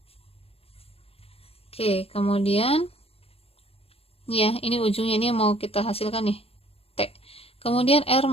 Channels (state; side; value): late; right; 0.28 ms